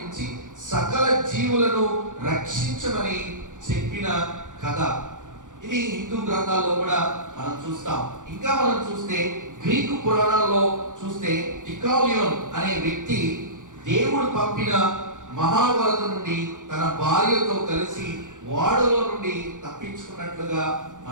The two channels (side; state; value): left; late; 0.87 ms